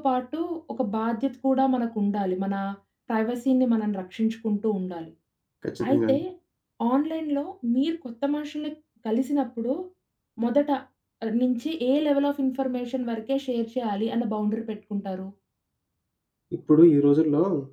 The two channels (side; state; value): both; identical; correlation 1.00